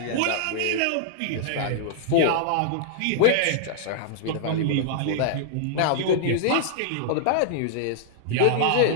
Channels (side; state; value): both; different; correlation -0.01